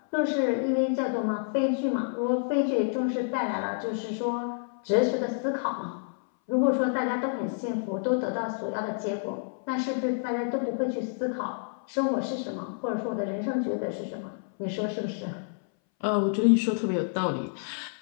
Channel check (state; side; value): silent; right; 59 dB below the other